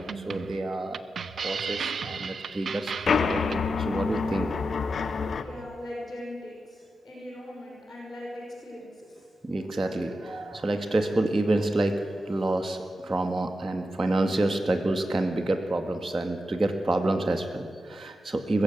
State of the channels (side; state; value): both; normal; correlation 0.89